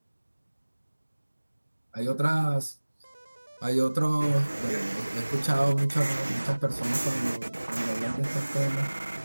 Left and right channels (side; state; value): both; inverted; correlation -1.00